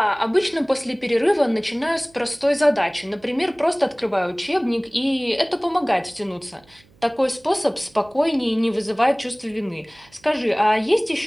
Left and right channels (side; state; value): right; noise; hum, 30 dB below the sound